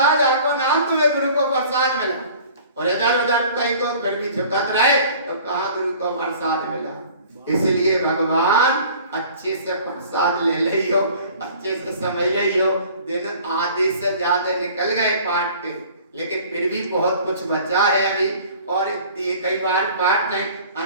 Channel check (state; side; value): inverted; both; correlation -0.48